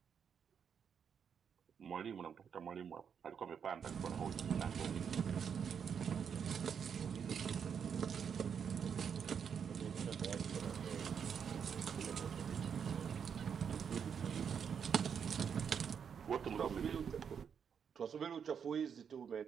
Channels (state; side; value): quieter; left; 7.3 dB